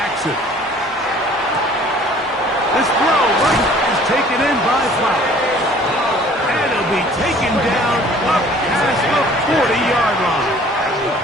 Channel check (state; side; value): normal; both; correlation 0.52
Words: This throw is taken in by Flowers. And it'll be taken down up past the 40-yard line.